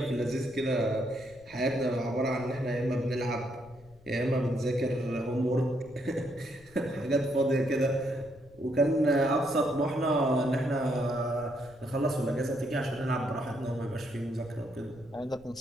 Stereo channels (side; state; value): left; noise; rumble, 25 dB below the sound